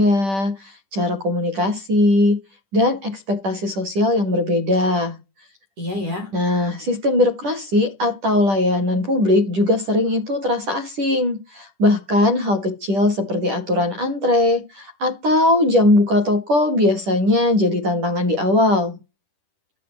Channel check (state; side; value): late; left; 10 ms